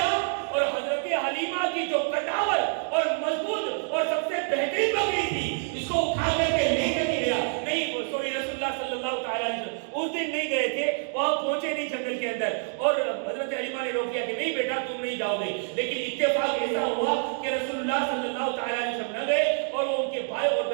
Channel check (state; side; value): silent; left; 56 dB below the other